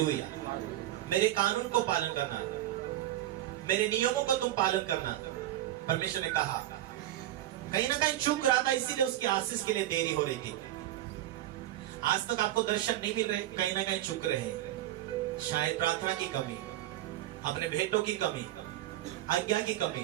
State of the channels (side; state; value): left; quieter; 13.9 dB